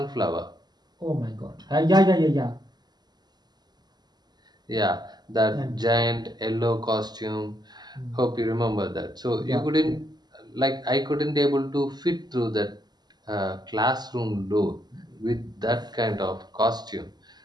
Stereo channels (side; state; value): left; late; 0.20 ms